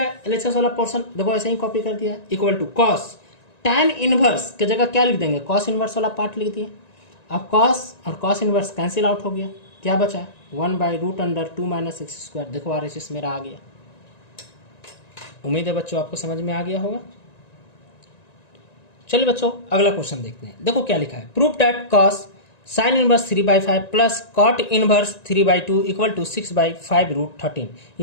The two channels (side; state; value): right; late; 1.9 ms